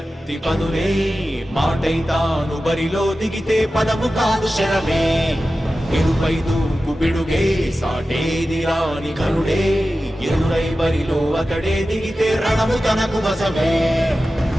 పదులే మాటై తాను బరిలో దిగితే పదము కాదు శరమే ఎరుపై దూకు పిడుగే సాటేది రాని కరుడే ఎరురై బరిలో అతడే దిగితే రణము తనకు వశమే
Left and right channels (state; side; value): normal; both; correlation 0.94